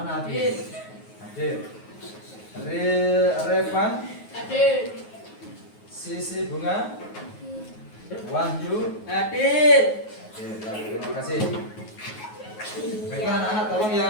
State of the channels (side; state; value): right; late; 9.4 ms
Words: Hadir? Hadir. Revan, Hadir. Sisi Bunga, Wahyu, Hadir. Hadir. Ya, terima kasih. Baiklah anak-anak, tolong